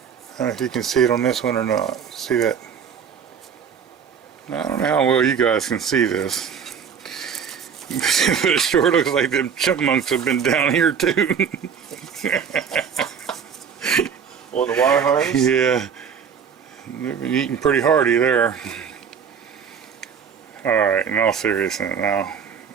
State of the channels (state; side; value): quieter; left; 7.1 dB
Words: don't know if you can see it on this one or not. See that? I don't know how well you guys can see this. But it sure looks like them chipmunks have been down here too. On the wire harness? Yeah. They've been eating pretty hearty there. Alright, in all seriousness now,